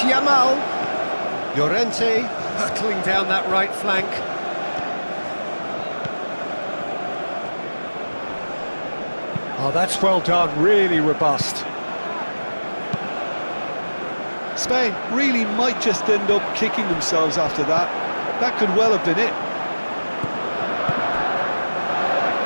Llorente Hurtling down that right flank. Oh, that's well done, really robust. Spain really might just end up kicking themselves after that. That could well have been it.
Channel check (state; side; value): inverted; both; correlation -1.00